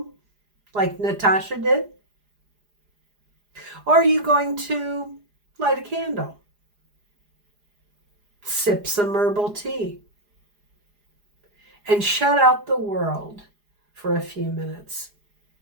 like Natasha did? Or are you going to light a candle? Sip some herbal tea? And shut out the world for a few minutes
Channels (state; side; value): late; left; 4.9 ms